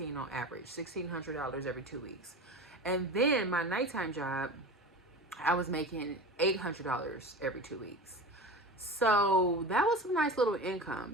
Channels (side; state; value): both; normal; correlation 0.31